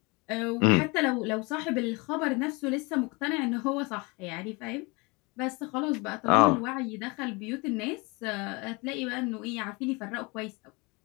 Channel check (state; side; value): quieter; right; 27.4 dB